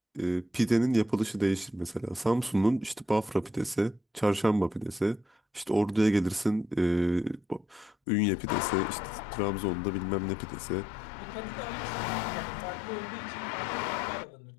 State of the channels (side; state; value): right; drops out; at 8.0 s